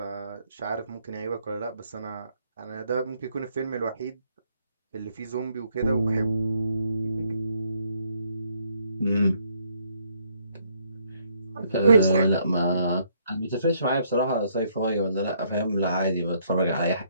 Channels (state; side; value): inverted; both; correlation -0.70